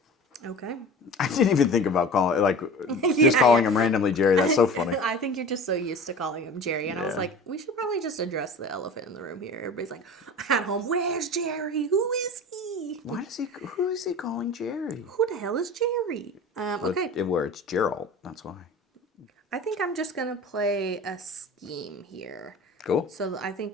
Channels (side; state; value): both; normal; correlation 0.37